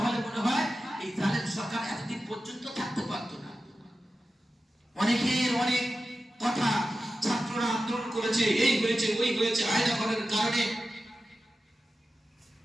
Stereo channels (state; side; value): normal; both; correlation 0.93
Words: মনে হয় এই জালেম সরকার এতদিন পর্যন্ত থাকতে পারত না। অনেকের অনেক কথা, ছাত্ররা আন্দোলন করেছে, এই হয়েছে ওই হয়েছে আয়না করার কারণে,